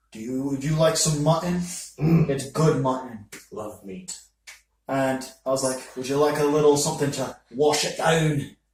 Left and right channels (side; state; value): both; identical; correlation 1.00